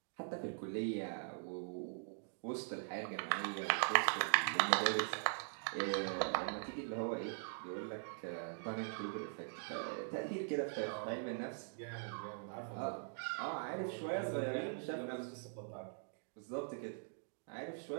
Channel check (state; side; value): silent; left; digital silence